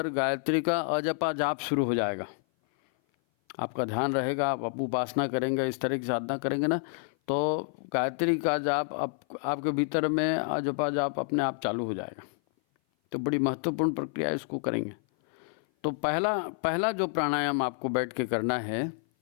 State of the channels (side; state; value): right; silent; 56 dB below the other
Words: गायत्री का अजपा जाप शुरू हो जाएगा। आपका ध्यान रहेगा, आप उपासना करेंगे, इस तरह की साधना करेंगे ना, तो गायत्री का जाप आपके भीतर में अजपा जाप अपने आप चालू हो जाएगा। तो बड़ी महत्वपूर्ण प्रक्रिया इसको करेंगे। तो पहला जो प्राणायाम आपको बैठ के करना है,